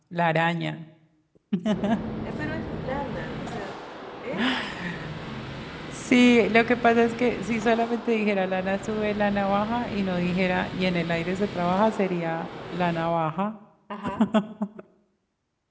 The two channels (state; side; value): identical; both; correlation 1.00